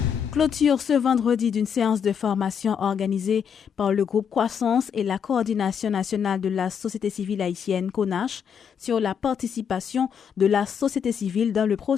Clôture ce vendredi d'une séance de formation organisée par le groupe Croissance et la Coordination nationale de la société civile haïtienne CONACH sur la participation de la société civile dans le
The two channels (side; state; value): right; quieter; 7.5 dB